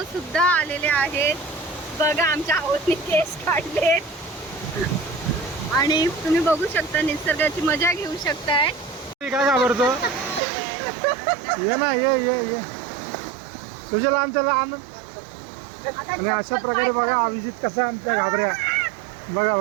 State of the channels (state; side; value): drops out; left; at 10.4 s